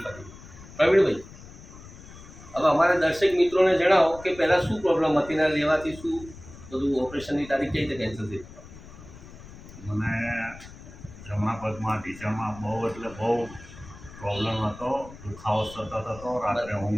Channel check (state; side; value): noise; left; rumble, 17 dB below the sound